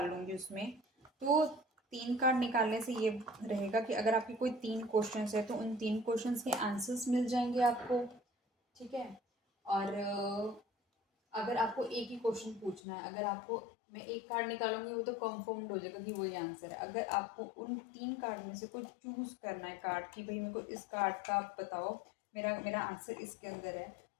लूँगी उसमें। तो 3 कार्ड निकालने से ये रहेगा कि अगर आपके कोई 3 क्वेश्चंस है तो उन 3 क्वेश्चंस के आंसर्स मिल जाएंगे आपको, ठीक है। और अगर आपको एक ही क्वेश्चन पूछना है, अगर आपको मैं एक कार्ड निकालूंगी वो तो कंफर्म्ड हो जाएगा कि वही आंसर है। अगर आपको उन 3 कार्ड में से कोई चूज़ करना है कार्ड कि भाई मेरे को इस कार्ड का आप बताओ, मेरा मेरा आंसर इसके अंदर है,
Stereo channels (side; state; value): right; drops out; at 12.8 s